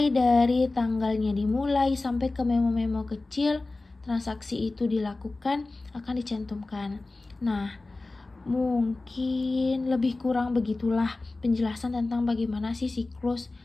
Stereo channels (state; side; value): quieter; right; 3.2 dB